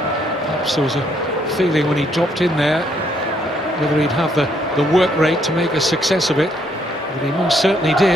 Perhaps there was a feeling when he dropped in there whether he'd have the work rate to make a success of it, but he most certainly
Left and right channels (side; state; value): both; normal; correlation 0.71